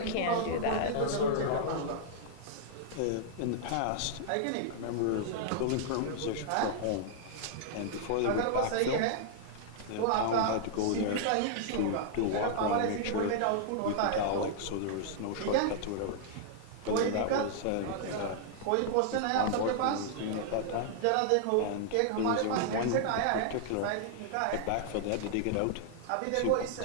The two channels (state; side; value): different; both; correlation -0.01